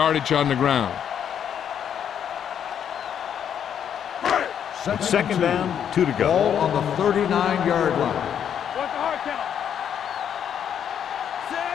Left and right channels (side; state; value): right; quieter; 8.8 dB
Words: on the ground. Second down, 2 to go. Ball on the 39-yard line. What's the hard count?